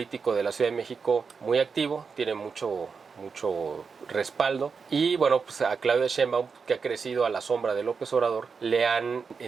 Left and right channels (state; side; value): quieter; left; 5.4 dB